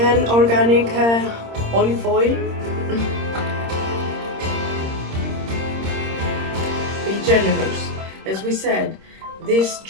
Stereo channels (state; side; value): late; left; 26 ms